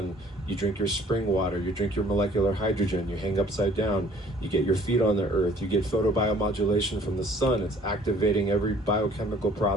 you drink your spring water, you drink your molecular hydrogen, you hang upside down, you get your feet on the earth, you get photobiomodulation from the sun. It's activating every biochemical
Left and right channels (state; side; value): normal; both; correlation 0.56